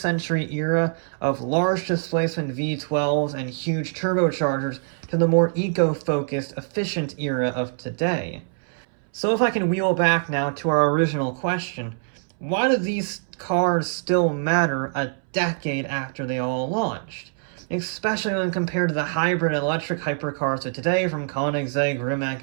era of large displacement V12s and huge turbochargers to the more eco-focused, efficient era of today. So if I can wheel back now to our original question, why do these cars still matter a decade after they all launched? Especially when compared to the hybrid electric hypercars of today from Koenigsegg,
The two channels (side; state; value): left; silent; 63 dB below the other